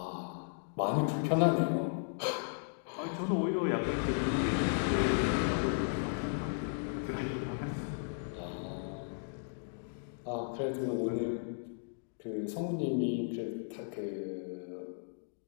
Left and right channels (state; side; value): silent; right; digital silence